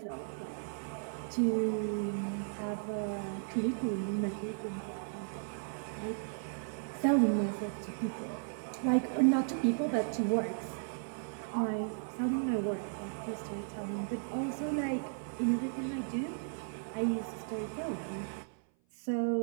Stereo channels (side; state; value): left; silent; 54 dB below the other